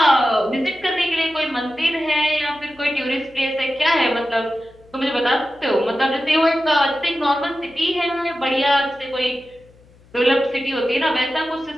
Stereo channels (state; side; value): noise; left; hum, 28 dB below the sound